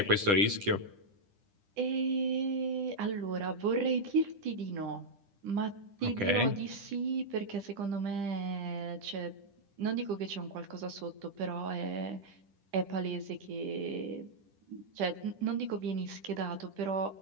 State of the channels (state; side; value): late; left; 10 ms